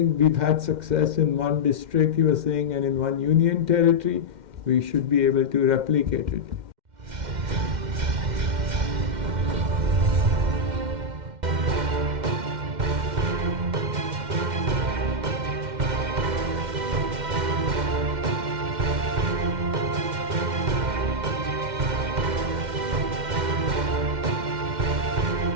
we've had success in one district, he was saying, and in one union territory. We should be able to replicate it.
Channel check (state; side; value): late; left; 2.1 ms